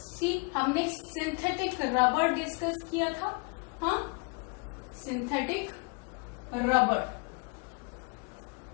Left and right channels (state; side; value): quieter; right; 31.4 dB